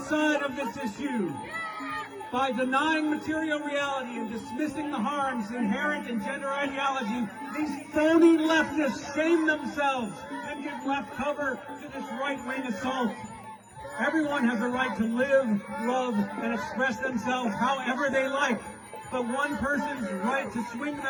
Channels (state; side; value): identical; both; correlation 1.00